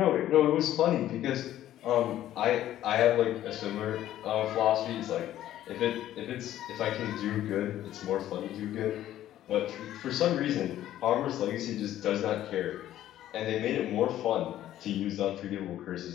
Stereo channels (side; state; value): right; quieter; 12.7 dB